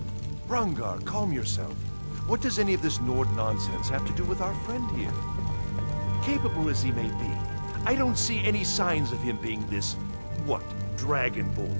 Rangar, calm yourself. What does any of this Nord nonsense have to do with our friend here? Capable as he may be, I don't see any signs of him being this,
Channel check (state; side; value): inverted; both; correlation -1.00